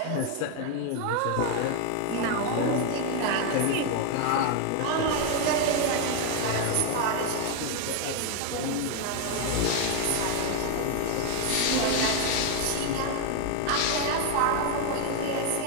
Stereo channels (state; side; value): different; both; correlation 0.01